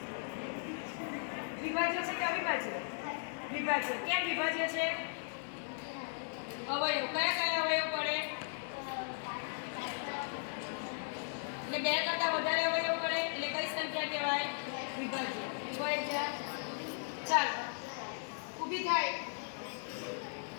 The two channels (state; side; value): silent; right; digital silence